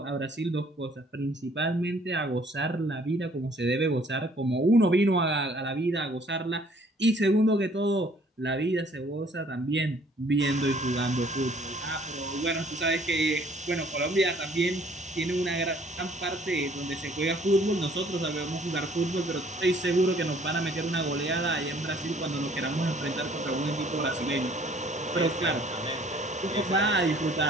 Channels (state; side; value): normal; both; correlation 0.59